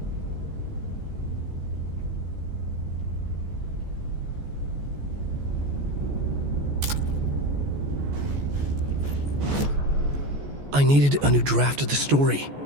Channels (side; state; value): left; late; 14 ms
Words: I needed a new draft of the story.